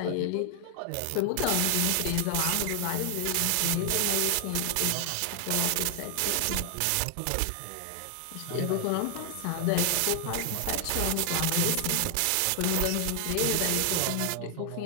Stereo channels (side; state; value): both; different; correlation 0.00